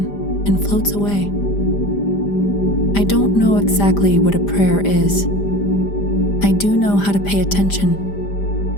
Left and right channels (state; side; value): late; right; 5.0 ms